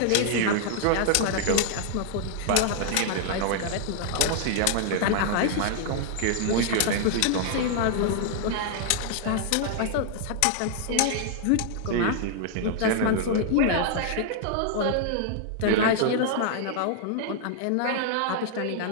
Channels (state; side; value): different; both; correlation -0.01